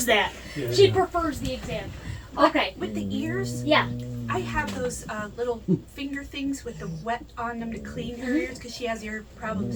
that. Yeah. She prefers the exam. Okay. With the ears, Yeah. I have those little finger things with the wet on them to clean her ears because she has ear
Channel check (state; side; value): identical; both; correlation 1.00